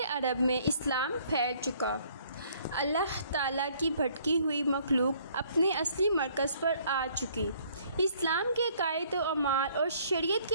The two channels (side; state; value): both; inverted; correlation -0.61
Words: عرب میں اسلام پھیل چکا، اللہ تعالیٰ کی بھٹکی ہوئی مخلوق اپنے اصلی مرکز پر آ چکی، اسلام کے عقائد و اعمال اور شریعت